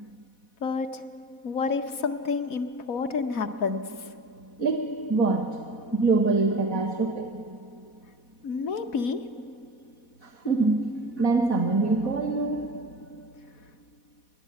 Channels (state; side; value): late; right; 4.1 ms